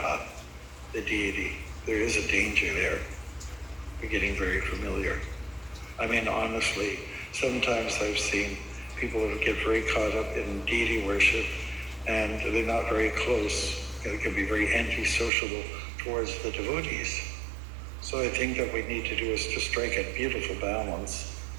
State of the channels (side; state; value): left; drops out; at 15.3 s